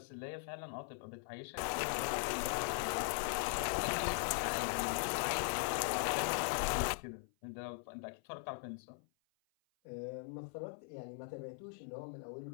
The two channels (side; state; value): right; silent; 51 dB below the other